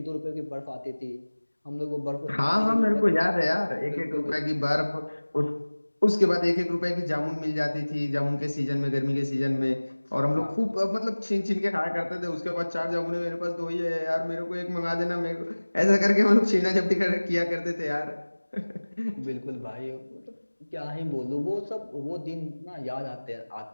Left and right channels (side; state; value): both; inverted; correlation -1.00